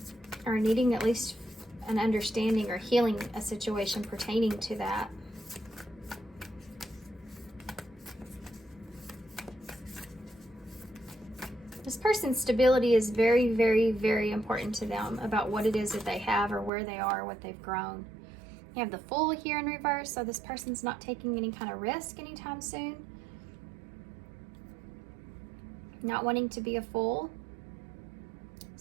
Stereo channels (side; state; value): left; drops out; at 16.7 s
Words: Or needing at least an understanding or healing a situation pertaining to that. This person's stability is very, very, very important to them about what it is that they have or where they are, what they've grown. You have the Fool here in reverse, so this person's not taking any kind of risk anytime soon. Not wanting to be a fool.